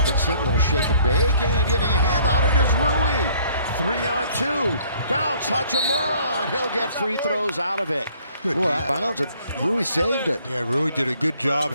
little shake and bake, and getting a hand on it is Rui. 3 on 2. Bounce, Hachimura, and he'll get free throws out of it. Good bounce, and Rui saved it. Yeah, Rui did a good job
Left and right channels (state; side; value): inverted; both; correlation -0.59